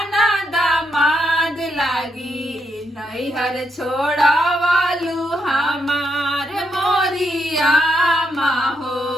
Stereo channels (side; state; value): both; normal; correlation 0.79